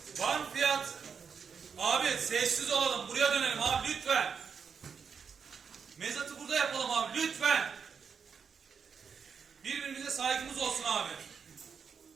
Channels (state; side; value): quieter; left; 6.3 dB